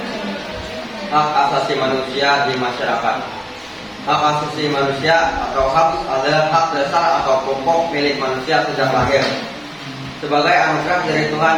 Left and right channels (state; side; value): identical; both; correlation 1.00